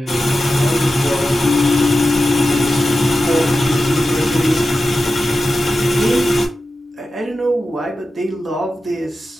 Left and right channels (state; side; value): normal; both; correlation 0.92